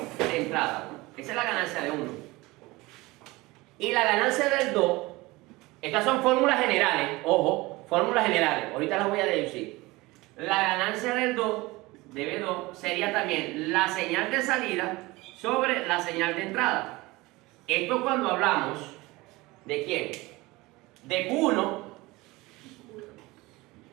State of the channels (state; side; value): quieter; left; 21.5 dB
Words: De entrada. Esa es la ganancia de 1. Y la ganancia del 2, estas son fórmulas generales, ojo, fórmulas generales, ahorita las voy a deducir. La ganancia del 2, de B2, sería también la señal de salida sobre la señal de entrada. Esto cuando hablamos de quién? De Q1